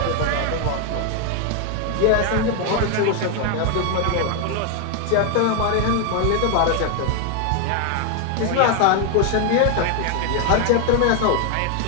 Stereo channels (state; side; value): different; both; correlation 0.01